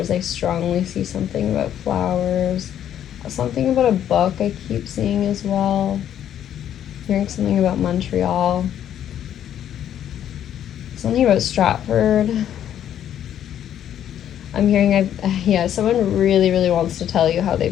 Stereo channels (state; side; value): quieter; right; 10.4 dB